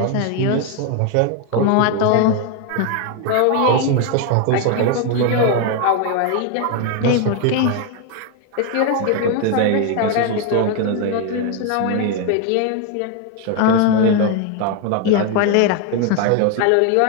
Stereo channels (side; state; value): both; different; correlation 0.01